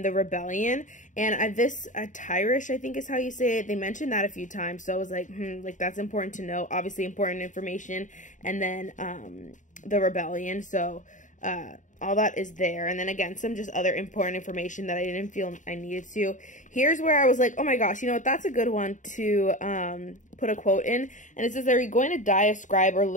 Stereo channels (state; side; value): late; right; 0.36 ms